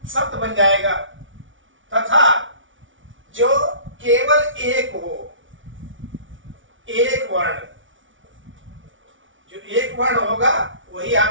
शब्द बन जाएगा। तथा जो केवल एक हो, एक वर्ण, जो एक वर्ण होगा वही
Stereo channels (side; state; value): left; late; 0.56 ms